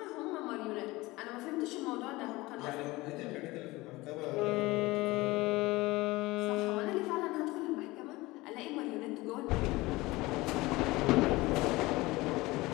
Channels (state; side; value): quieter; right; 20.8 dB